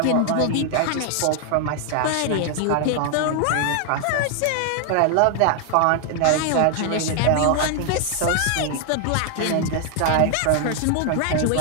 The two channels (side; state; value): both; different; correlation 0.00